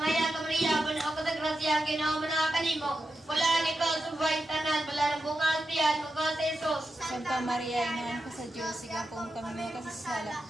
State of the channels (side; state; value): both; normal; correlation 0.89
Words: ka Maria, puno ka sa grasya, ginawa mo na kanimo. Bulaan ikaw sa babaeng tanan, wala ng bungas, iyan mga sesos. Santa Maria, Inahan ka sa Diyos, sigang po kami makasasala,